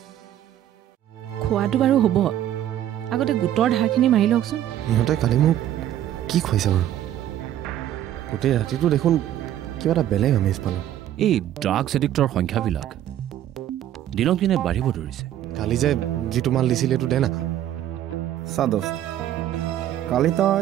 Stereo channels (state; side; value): quieter; left; 11.9 dB